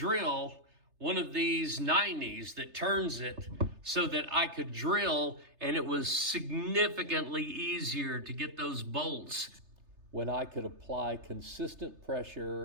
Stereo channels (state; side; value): late; left; 3.3 ms